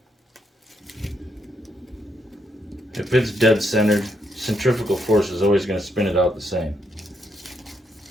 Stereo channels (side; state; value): both; normal; correlation 0.76